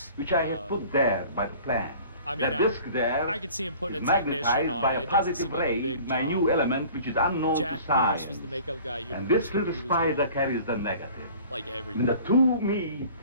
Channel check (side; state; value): both; inverted; correlation -0.47